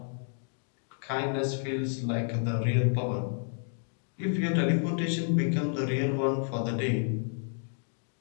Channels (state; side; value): silent; right; 57 dB below the other